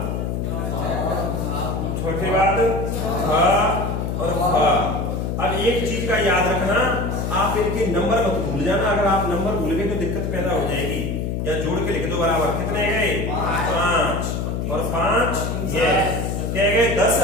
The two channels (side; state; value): left; noise; hum, 2 dB below the sound